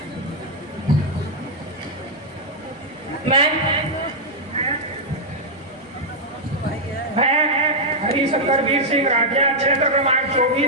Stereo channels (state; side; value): normal; both; correlation -0.04